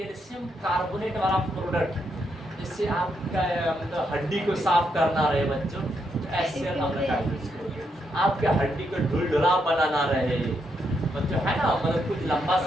कार्बोनेट वाला प्रोडक्ट जिससे आपका मतलब हड्डी को साफ करना रहे बच्चों, HCl अम्ल का आपके हड्डी को ढुलढुला बनाना रहे बच्चों, है ना, मतलब कुछ लंबा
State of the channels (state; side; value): normal; both; correlation 0.79